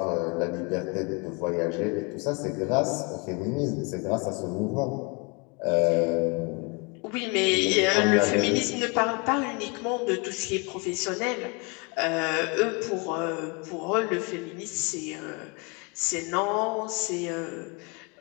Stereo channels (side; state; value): right; quieter; 31.3 dB